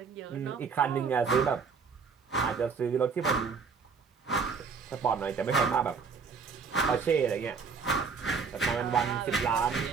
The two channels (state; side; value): quieter; left; 5.5 dB